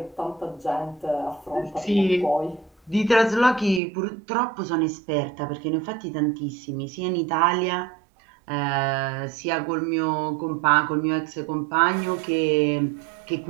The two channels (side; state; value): left; drops out; at 3.8 s